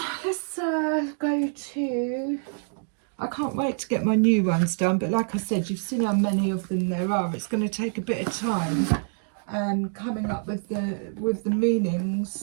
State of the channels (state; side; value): silent; left; 61 dB below the other